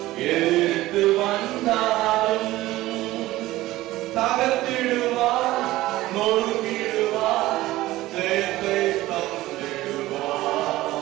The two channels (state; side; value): quieter; left; 16.9 dB